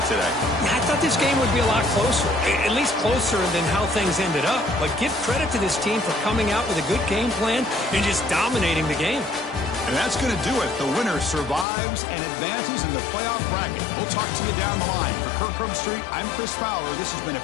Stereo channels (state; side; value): drops out; right; at 11.7 s